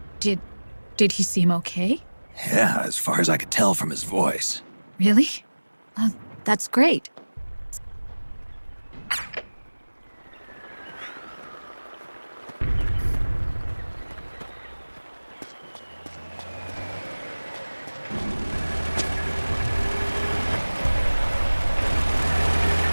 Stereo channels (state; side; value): inverted; both; correlation -1.00